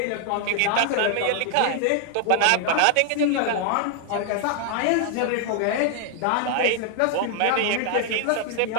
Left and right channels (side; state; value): both; different; correlation 0.00